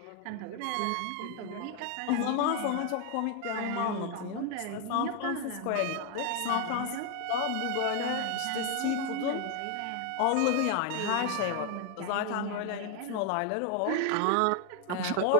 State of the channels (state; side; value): different; both; correlation 0.01